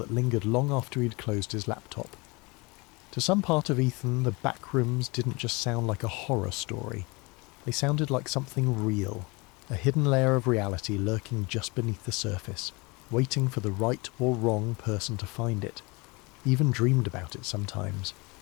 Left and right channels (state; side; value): quieter; right; 26.5 dB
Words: lingered long after he'd closed his laptop. To some part of Ethan, the Backrooms didn't just sound like a horror story. They sounded like something real, a hidden layer of reality lurking just beneath the surface, waiting for the right or wrong person to find it. He even dreamed about it sometimes.